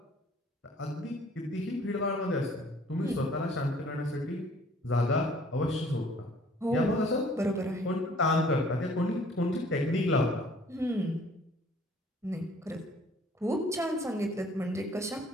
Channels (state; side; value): normal; both; correlation 0.56